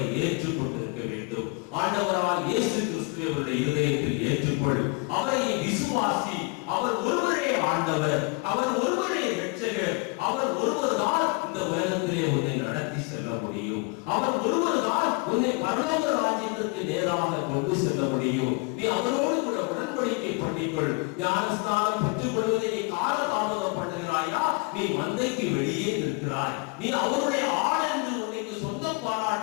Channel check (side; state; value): right; quieter; 29.3 dB